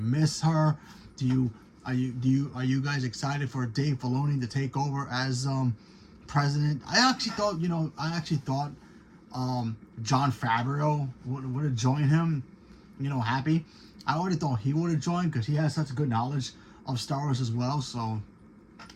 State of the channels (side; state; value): both; identical; correlation 1.00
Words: her? Are you guys excited for Dave Filoni to take over as president? I actually thought Jon Favreau would have joined him. You know, happy. I already thought he would have joined because he has such good knowledge of Star Wars as well. So,